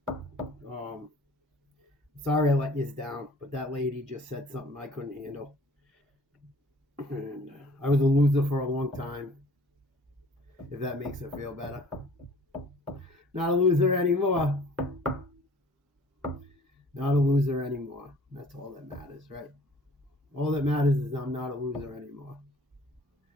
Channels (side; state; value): both; normal; correlation 0.52